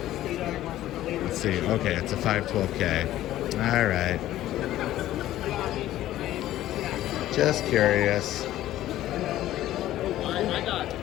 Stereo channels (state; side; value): quieter; right; 13.9 dB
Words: Let's see. Okay, it's a 512K. All right. Just curious.